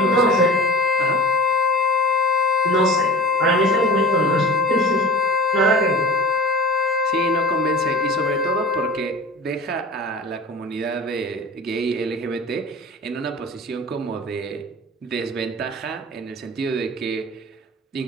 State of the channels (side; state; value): both; normal; correlation 0.37